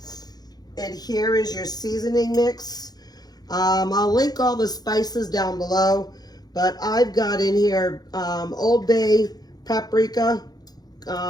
And here is your seasoning mix. I'll link all the spices down below, but I've got in here Old Bay, paprika,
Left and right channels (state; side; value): late; right; 0.19 ms